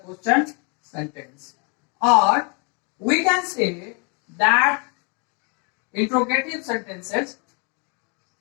sentence. Or we can say that interrogative sentences,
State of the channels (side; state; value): right; quieter; 34.5 dB